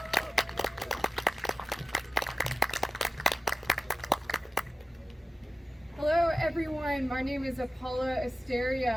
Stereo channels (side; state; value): both; normal; correlation 0.93